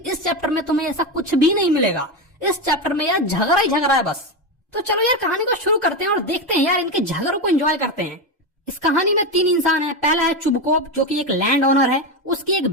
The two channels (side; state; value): both; normal; correlation 0.14